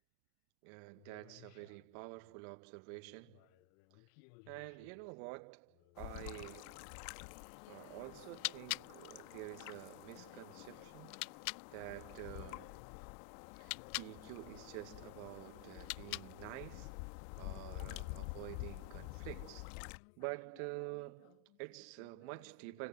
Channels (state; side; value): different; both; correlation 0.00